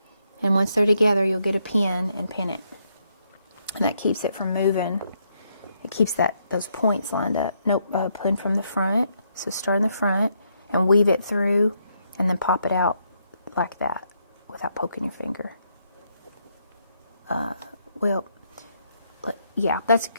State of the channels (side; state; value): both; inverted; correlation -0.76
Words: And once they're together, you'll get a pin and pin it. And that keeps it from moving. It keeps those points lined up. Nope, pin from the front. So start in the front and weave it through and then pop it out like that without poking your finger. Yeah, that's